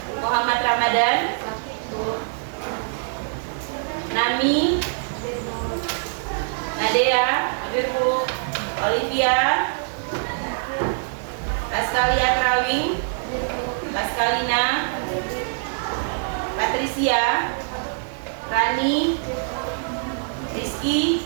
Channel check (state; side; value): silent; left; digital silence